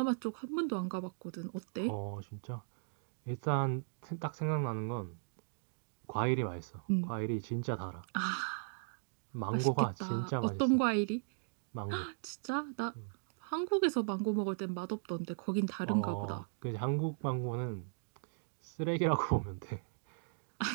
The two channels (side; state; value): left; silent; digital silence